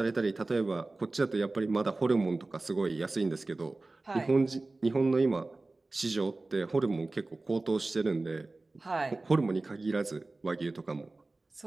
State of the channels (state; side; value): quieter; left; 3.2 dB